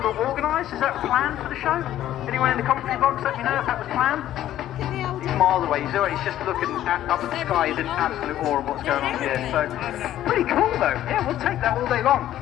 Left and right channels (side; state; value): right; quieter; 12.6 dB